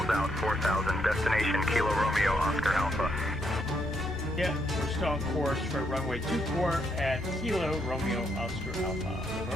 out, 4,000. Destination Kilo Romeo Oscar Alpha. Yeah, we're still on course for runway 24 at Kilo Romeo Oscar Alpha.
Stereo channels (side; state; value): both; normal; correlation 0.76